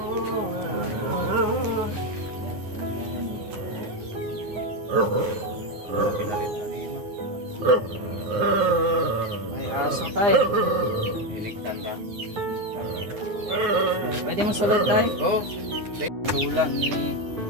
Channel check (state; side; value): late; left; 9.8 ms